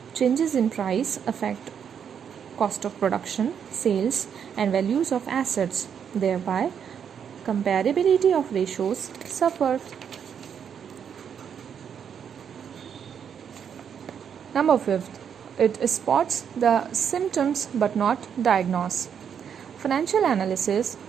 Changes in price affect cost of production, sales, and values of assets. Thereby, comparability of ratios suffer. Number 5. It spots the symptoms but not diagnose. Financial analysis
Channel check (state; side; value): quieter; left; 7.8 dB